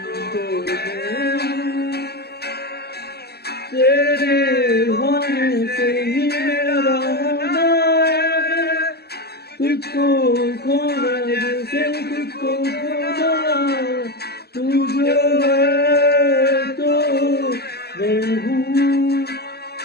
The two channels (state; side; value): late; right; 0.47 ms